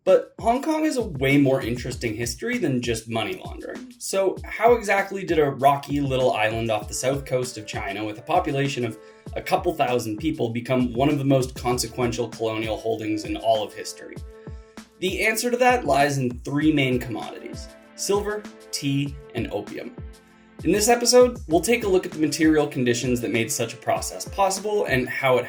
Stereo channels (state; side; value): identical; both; correlation 1.00